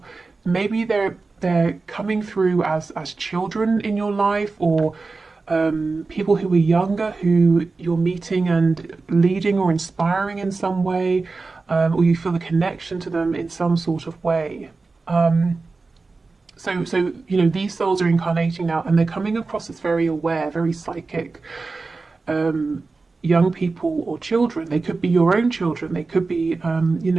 Maybe they're coming through as children in your life, or people who are younger who you're meeting and leading or inspiring in some way, or you feel a connection to them in some sort of way. So you know, these souls are incarnating now, and they're coming across as very aware, very psychic, young people or children. They could be your own children. They could be, you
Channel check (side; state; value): left; quieter; 3.9 dB